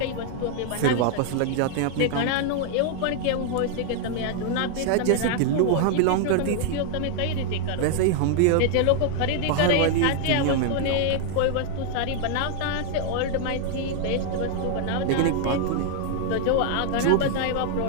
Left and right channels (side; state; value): both; different; correlation 0.00